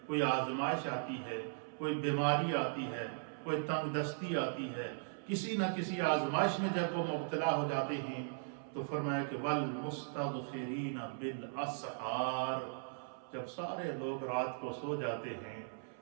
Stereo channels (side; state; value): left; silent; 52 dB below the other